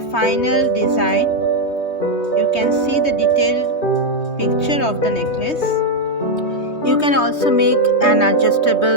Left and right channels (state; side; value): late; right; 3.2 ms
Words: final design. You can see the detailed picture of the necklace. You can also make an